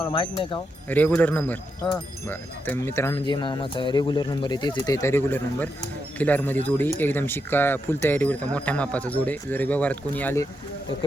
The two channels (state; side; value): normal; both; correlation 0.84